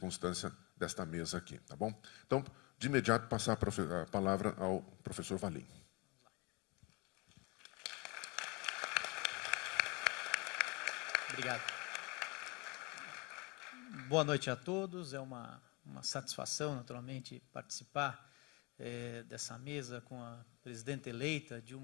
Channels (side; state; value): right; quieter; 25.6 dB